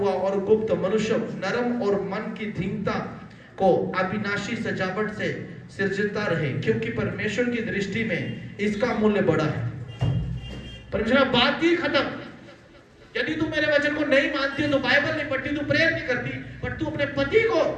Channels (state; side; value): identical; both; correlation 1.00